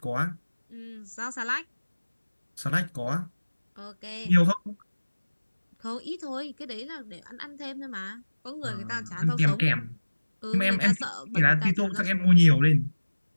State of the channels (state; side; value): inverted; both; correlation -1.00